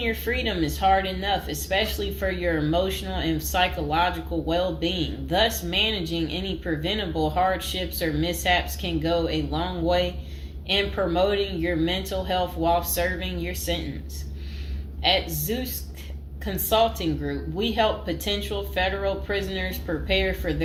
your freedom is hard enough, especially for your emotional and psychological well-being. Thus, managing any preventable hardships or mishaps can go a long way in promoting your mental health while serving your sentence. At Zeus Consulting Group, we help potential federal prisoners prepare for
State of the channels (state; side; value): identical; both; correlation 1.00